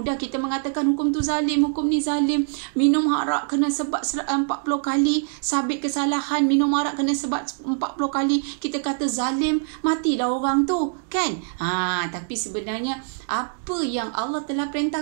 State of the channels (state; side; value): silent; left; 60 dB below the other